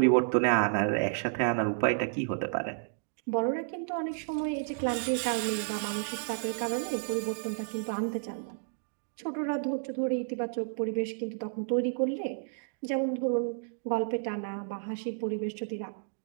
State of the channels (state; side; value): silent; left; digital silence